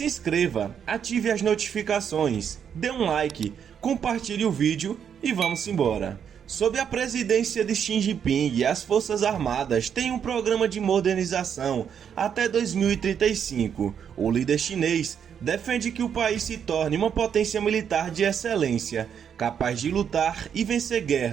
inscreva, ative as notificações, dê um like, compartilhe o vídeo e vamos embora. Sob a presidência de Xi Jinping, as Forças Armadas têm um programa de modernização até 2035. O líder chinês defende que o país se torne uma potência militar de excelência, capaz de lutar e vencer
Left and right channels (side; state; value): left; quieter; 8.0 dB